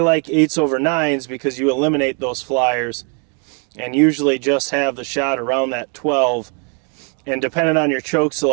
8s over 9s because you eliminate those flyers and usually just have the shot around that 12. And depending on your choke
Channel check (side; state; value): left; quieter; 37.0 dB